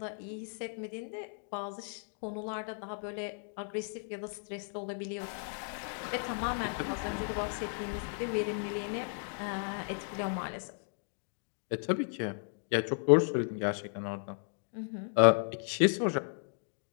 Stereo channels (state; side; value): silent; right; 55 dB below the other